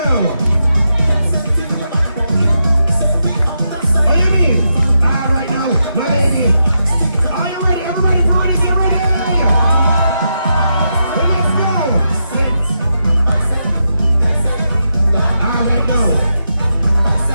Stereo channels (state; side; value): inverted; both; correlation -0.85